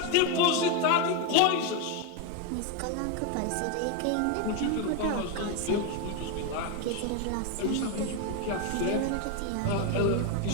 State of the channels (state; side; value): different; both; correlation 0.02